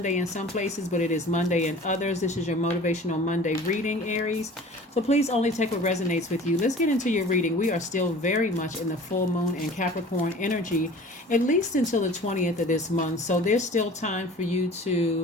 in some places, but it is Monday in others. This is your Motivational Monday reading, Aries. So please only take what resonates with you. Let's get into your reading. We are still very much in the full moon and Capricorn energy, at least until the 20th of this month. So there's still time for you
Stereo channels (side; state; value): both; normal; correlation 0.44